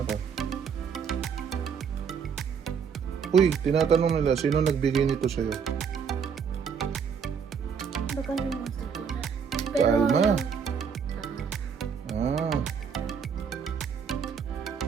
ka? Uy, tinatanong nila, sino nagbigay nito sa'yo? Baka naman ko na. Kalma. Ah.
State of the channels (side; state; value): left; quieter; 6.7 dB